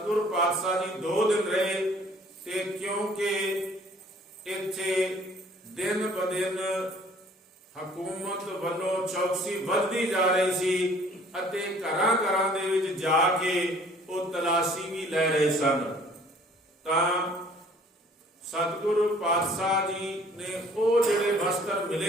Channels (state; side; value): normal; both; correlation 0.55